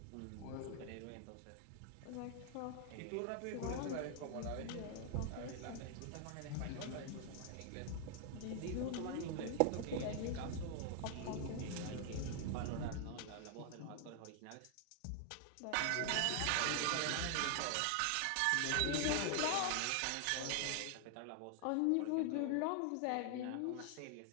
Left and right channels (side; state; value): both; different; correlation 0.00